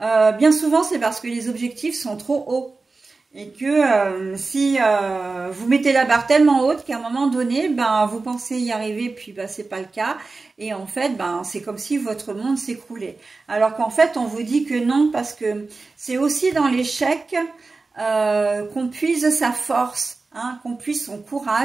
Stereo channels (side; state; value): left; quieter; 3.8 dB